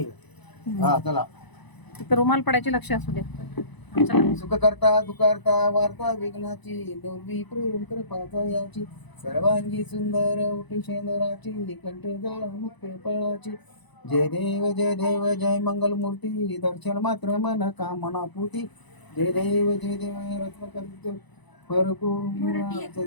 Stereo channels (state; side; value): late; right; 1.0 ms